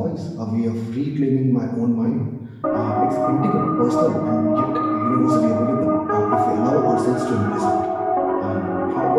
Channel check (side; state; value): both; identical; correlation 1.00